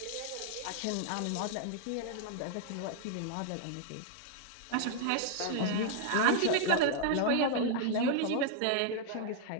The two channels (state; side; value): different; both; correlation 0.00